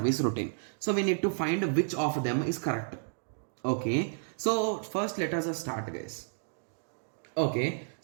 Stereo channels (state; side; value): silent; left; digital silence